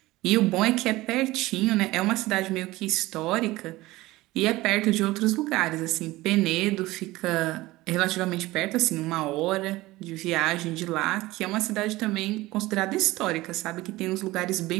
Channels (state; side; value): quieter; left; 18.9 dB